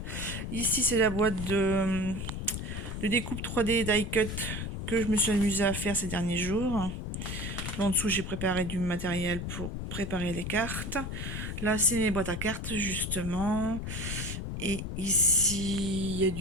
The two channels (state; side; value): noise; left; rumble, 5 dB below the sound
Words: Ici, c'est la boîte de découpe 3D die cut que je me suis amusée à faire ces derniers jours. En dessous, j'ai préparé du matériel pour préparer les cartes. Là, c'est les boîtes à cartes, justement. Et ici, il y a